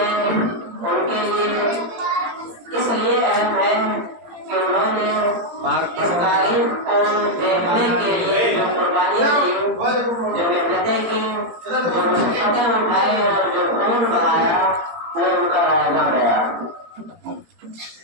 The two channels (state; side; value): late; left; 17 ms